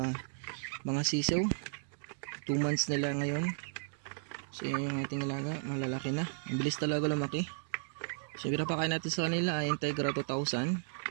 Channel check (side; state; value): left; silent; digital silence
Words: mga sisew. 2 months nila ngayon. So yan yung ating alaga, malalaki na. Ang bilis talaga lumaki. So yung pinapakain natin sa kanila ay Integra 2000.